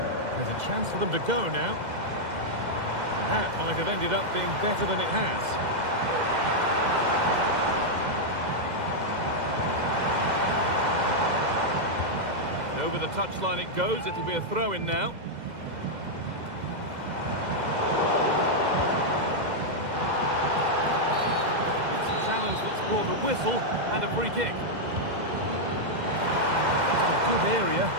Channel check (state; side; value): late; left; 2.0 ms